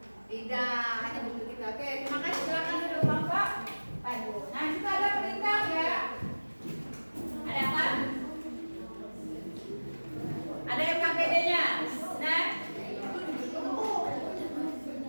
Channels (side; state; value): both; inverted; correlation -1.00